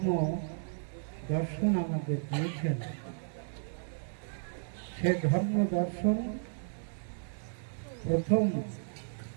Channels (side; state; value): left; silent; digital silence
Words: দর্শন আমাদের দিয়েছেন, সে ধর্ম দর্শন প্রথম